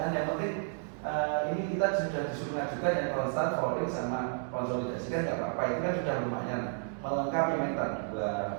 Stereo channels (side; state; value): left; silent; 56 dB below the other